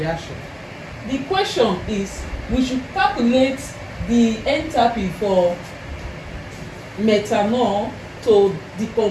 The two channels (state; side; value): identical; both; correlation 1.00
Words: The question is, we should calculate the enthalpy for methanol to